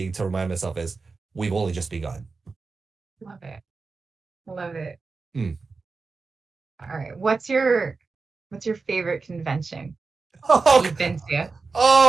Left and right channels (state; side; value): quieter; left; 4.3 dB